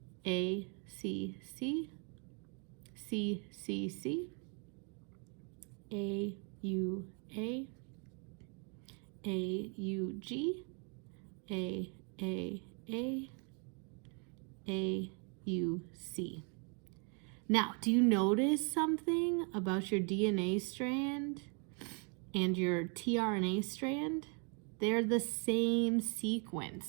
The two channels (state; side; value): quieter; left; 37.2 dB